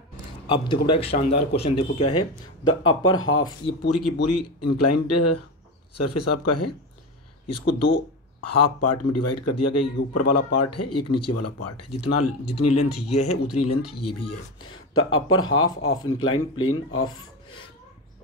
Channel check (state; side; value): normal; both; correlation 0.21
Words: अब देखो बेटा एक शानदार क्वेश्चन देखो क्या है, द अपर हाफ, ये पूरी की पूरी इंक्लाइंड सरफेस आपका है, इसको दो हाफ पार्ट में डिवाइड कर दिया गया, एक ऊपर वाला पार्ट है एक नीचे वाला पार्ट है, जितनी लेंथ ये है उतनी लेंथ ये भी है। The upper half of inclined plane of